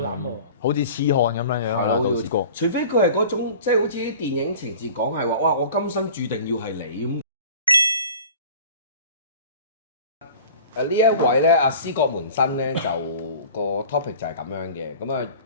膽喎！好似痴漢咁樣樣啦，都試過。除非佢係嗰種即係好似啲電影情節講係話，哇！我今生注定要係你咁。呢一位咧，阿思覺門生咧就個 topic 就係咁樣嘅。咁啊，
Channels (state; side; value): inverted; both; correlation -0.43